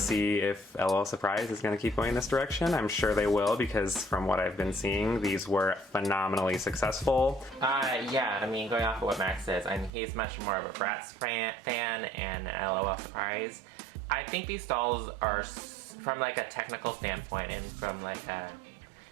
if L.O.L Surprise is going to keep going in this direction. I'm sure they will, because from what I've been seeing, these were phenomenally successful. Yeah, I mean, going off of what Max says, I mean, he's much more of a Bratz fan and L.O.L Surprise. I think these dolls are, from like a technical standpoint and from like a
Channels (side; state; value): left; drops out; at 9.9 s